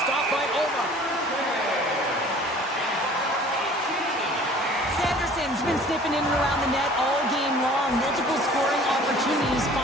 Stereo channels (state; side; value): normal; both; correlation 0.49